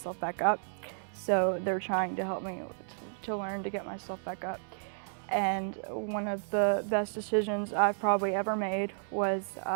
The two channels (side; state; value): left; silent; 56 dB below the other